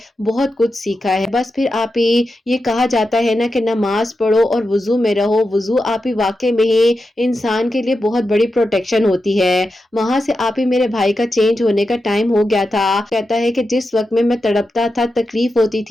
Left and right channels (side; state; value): both; normal; correlation 0.89